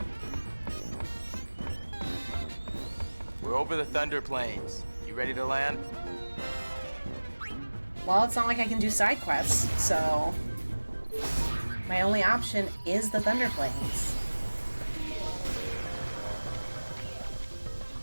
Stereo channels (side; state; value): both; inverted; correlation -1.00